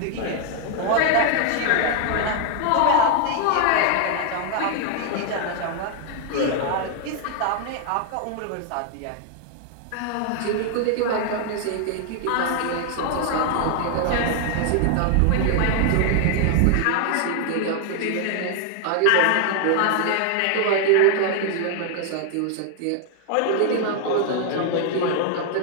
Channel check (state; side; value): different; both; correlation 0.00